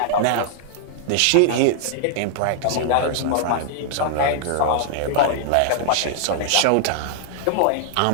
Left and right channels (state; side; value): different; both; correlation 0.00